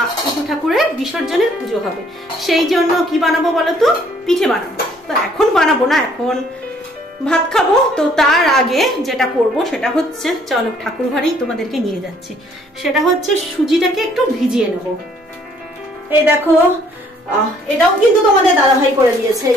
ইতু ঠাকুরের বিসর্জনের পুজো হবে, সেই জন্য কি বানাবো বলো তো, পিঠে বানাবো। তো এখন বানাবো না, এখন ভাত খাবো। তো তার আগে যেটা করব সেটা হচ্ছে, চলো ঠাকুর ঘরেই তোমাদেরকে নিয়ে যাচ্ছি, সেটা হচ্ছে সুজিটাকে একটু ভিজিয়ে নেবো। এই দেখো, এটাও কিন্তু তোমাদের দাদাভাই করে দিয়েছে।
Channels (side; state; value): both; normal; correlation 0.62